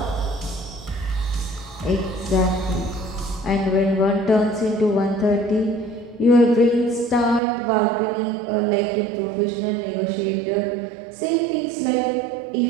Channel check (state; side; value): drops out; left; at 7.4 s